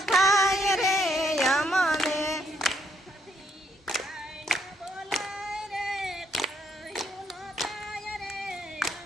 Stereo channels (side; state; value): both; normal; correlation 0.72